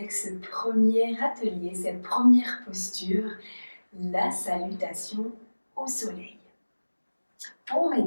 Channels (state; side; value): inverted; both; correlation -1.00